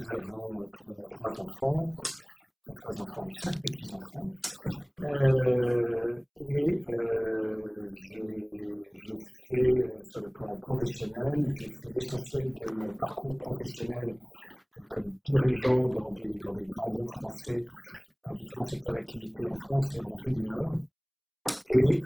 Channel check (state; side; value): identical; both; correlation 1.00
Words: avons trois enfants, 3 enfants et 5 petits-enfants. J'ai fait, sur le plan professionnel, j'ai fait l'essentiel de mon parcours professionnel, comme dirigeant dans des grands groupes français, dans différents secteurs d'activité en France et en Afrique du Nord. J'ai